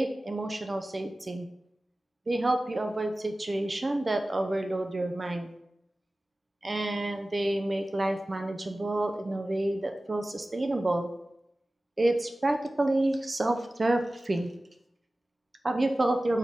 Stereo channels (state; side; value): normal; both; correlation 0.97